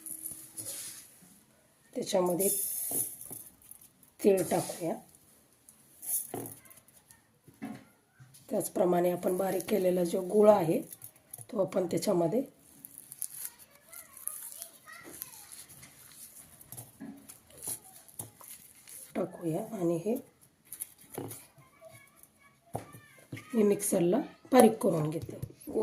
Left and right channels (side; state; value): both; identical; correlation 1.00